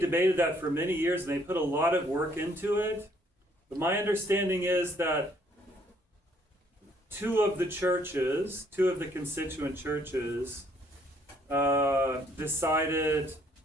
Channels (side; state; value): both; normal; correlation 0.65